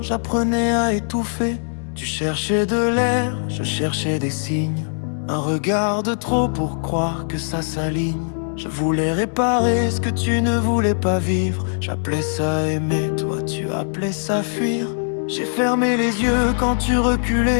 à étouffer. Tu cherchais de l'air, je cherchais des signes. Un regard de trop pour croire que ça s'aligne. Je voulais réparer ce que tu ne voulais pas vivre. J'appelais ça aimer, toi tu appelais ça fuir. J'ai fermé les yeux quand tu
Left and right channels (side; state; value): right; silent; digital silence